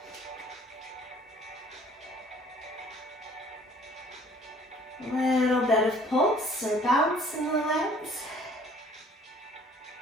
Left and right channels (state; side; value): normal; both; correlation 0.55